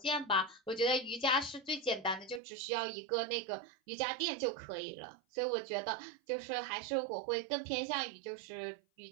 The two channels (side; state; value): left; drops out; at 2.4 s